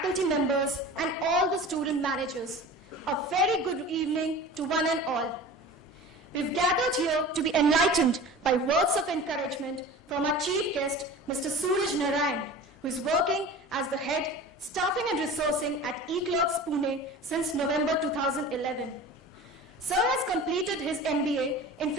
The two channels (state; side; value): normal; both; correlation 0.37